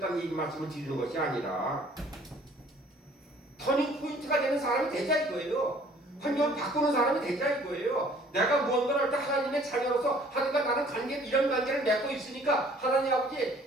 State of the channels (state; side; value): normal; both; correlation 0.56